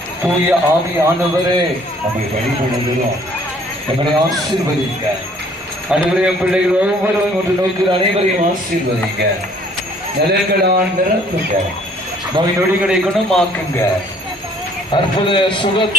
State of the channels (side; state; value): both; normal; correlation 0.58